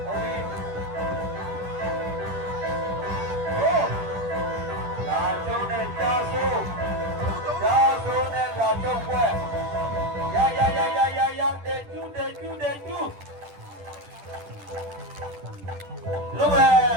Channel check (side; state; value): left; late; 10 ms